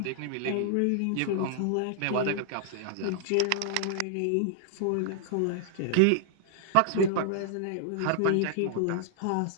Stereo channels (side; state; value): both; different; correlation -0.01